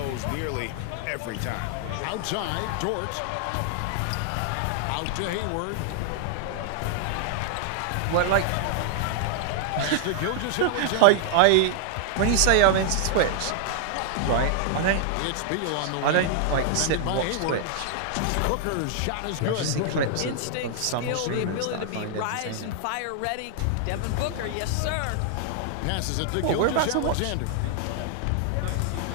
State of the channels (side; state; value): both; different; correlation 0.00